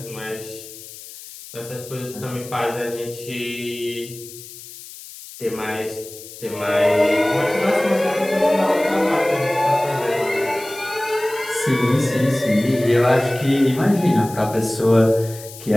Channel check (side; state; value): left; noise; hiss, 16 dB below the sound